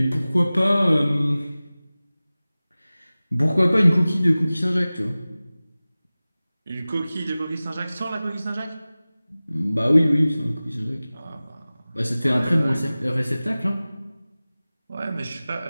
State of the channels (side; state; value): both; inverted; correlation -0.98